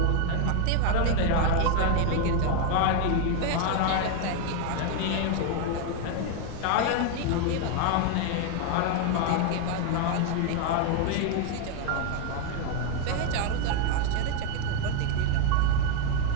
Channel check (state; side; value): different; both; correlation 0.01